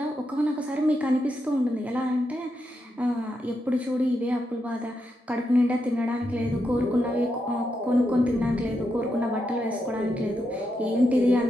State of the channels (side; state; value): both; normal; correlation 0.84